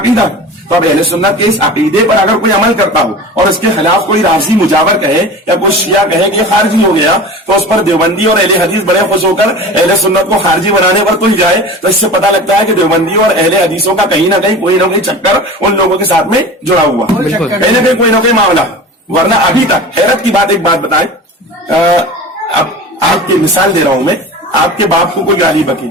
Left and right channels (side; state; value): both; normal; correlation 0.35